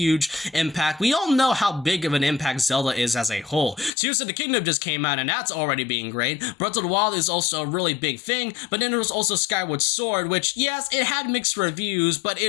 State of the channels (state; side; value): drops out; right; at 3.9 s